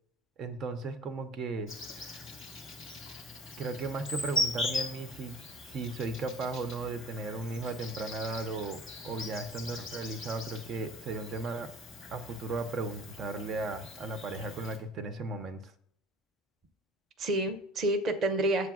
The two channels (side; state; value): both; normal; correlation 0.44